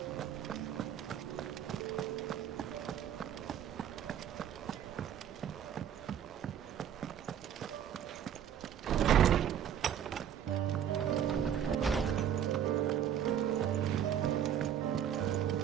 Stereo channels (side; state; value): left; quieter; 9.4 dB